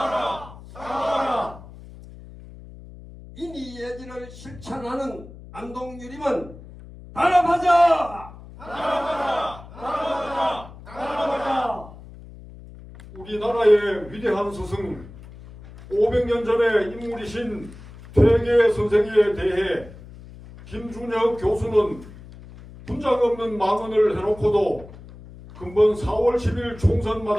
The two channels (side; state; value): left; noise; hum, 17 dB below the sound